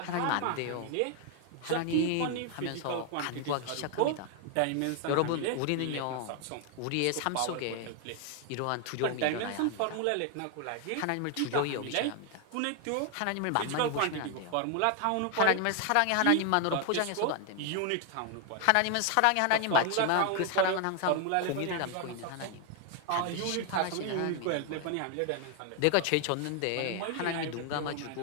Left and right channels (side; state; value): both; different; correlation 0.00